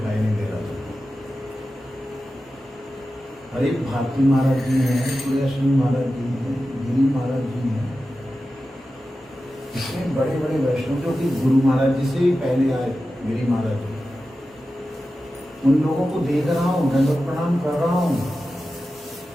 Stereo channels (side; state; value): both; normal; correlation 0.93